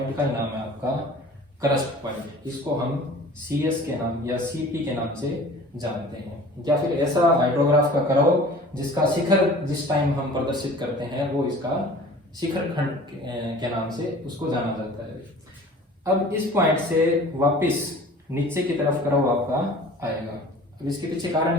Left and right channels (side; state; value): both; normal; correlation 0.45